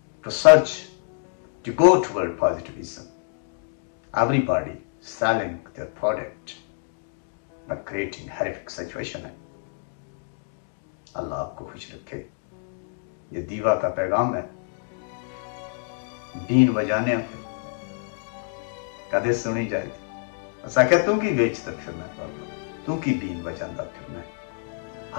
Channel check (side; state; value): right; silent; 61 dB below the other